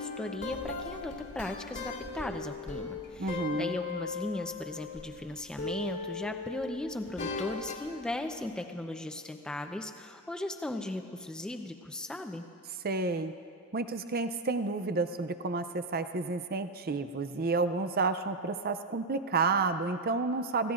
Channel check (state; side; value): normal; both; correlation 0.20